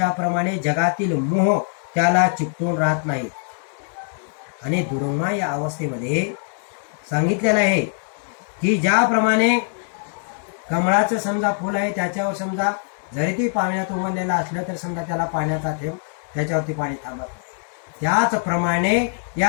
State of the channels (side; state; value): right; silent; digital silence